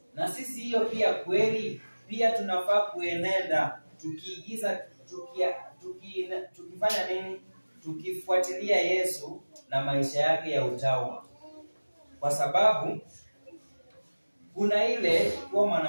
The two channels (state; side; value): inverted; both; correlation -1.00